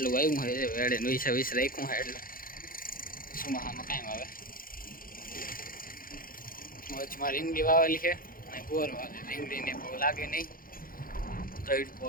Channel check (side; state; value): right; late; 0.41 ms